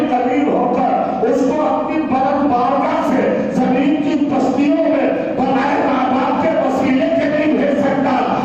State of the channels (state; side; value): identical; both; correlation 1.00